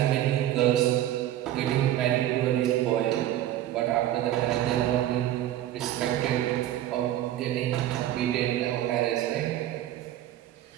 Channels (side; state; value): left; quieter; 12.9 dB